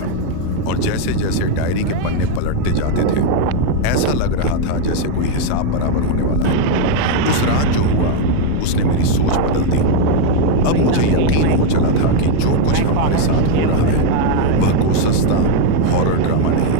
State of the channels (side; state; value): both; different; correlation 0.01